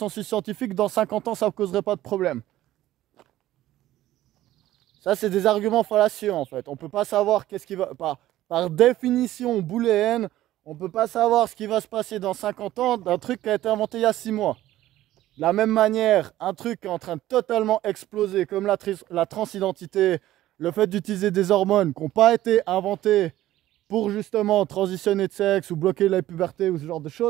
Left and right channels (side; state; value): left; quieter; 14.5 dB